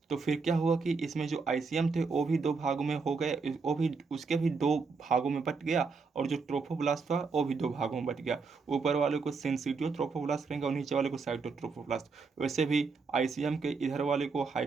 तो फिर क्या हुआ कि इसमें जो आईसीएम थे वो भी 2 भागों में हो गए, वो भी उसके भी 2 भागों में बट गया, और जो ट्रोफोब्लास्ट था वो भी 2 भागों में बट गया। ऊपर वाले को सेंसिटिव ट्रोफोब्लास्ट करेंगे और नीचे वाले को साइटोट्रोफोब्लास्ट। वैसे भी आईसीएम के इधर वाले को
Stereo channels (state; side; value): quieter; left; 4.7 dB